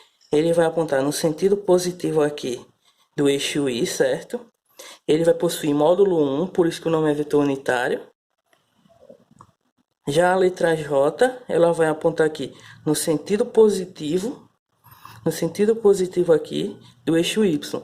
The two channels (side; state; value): both; identical; correlation 1.00